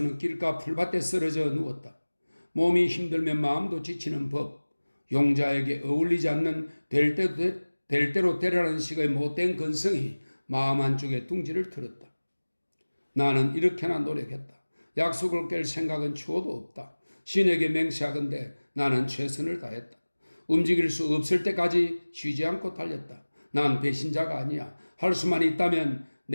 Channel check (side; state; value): both; inverted; correlation -1.00